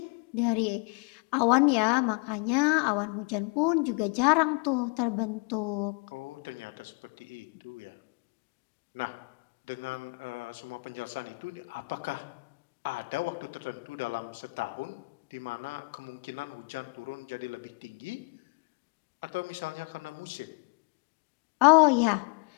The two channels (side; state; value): right; quieter; 31.6 dB